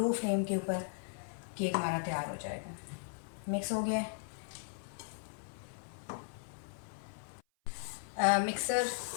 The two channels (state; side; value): silent; right; 53 dB below the other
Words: फ्लेम के ऊपर केक हमारा तैयार हो जाएगा। मिक्स हो गया है। मिक्सर